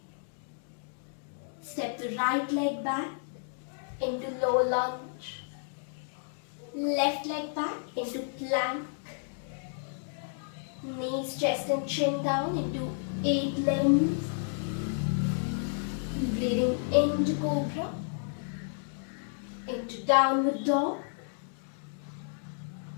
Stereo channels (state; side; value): silent; right; digital silence